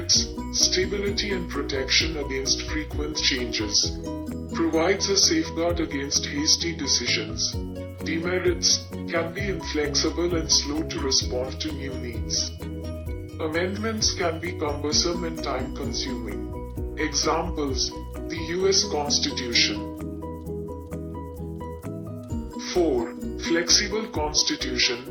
stability and protection against frequent changes, provides a safeguard against hasty decisions. Demerits: can be inflexible and slow to respond to new needs. Amendments can be cumbersome and time-consuming. Examples: the U.S. Constitution. 4. Flexible constitution.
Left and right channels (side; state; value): both; identical; correlation 1.00